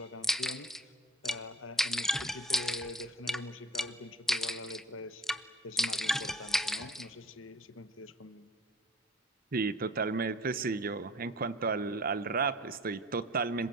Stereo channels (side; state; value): both; normal; correlation 0.44